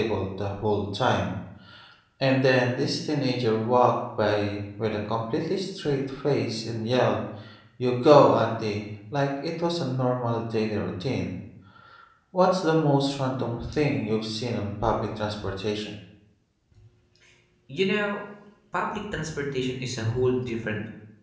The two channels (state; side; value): identical; both; correlation 1.00